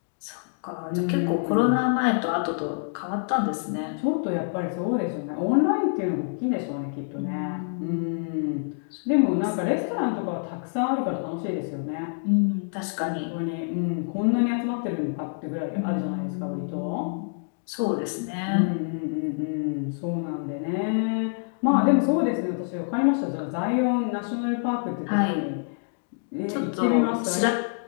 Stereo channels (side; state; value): right; silent; digital silence